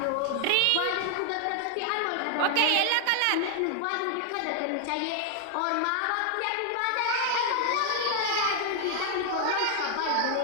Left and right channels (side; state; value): both; different; correlation 0.00